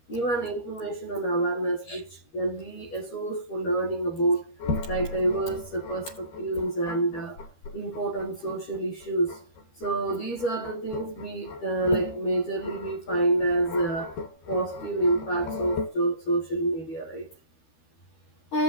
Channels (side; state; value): right; late; 13 ms